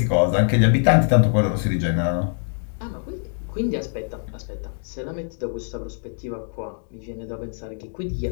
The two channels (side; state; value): right; silent; 63 dB below the other